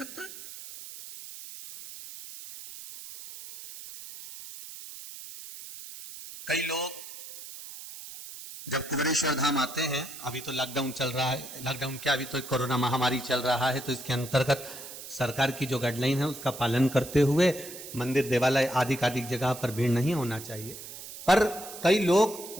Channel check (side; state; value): right; noise; hiss, 13 dB below the sound